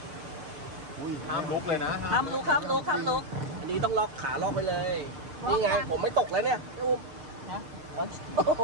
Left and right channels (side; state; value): left; late; 6.6 ms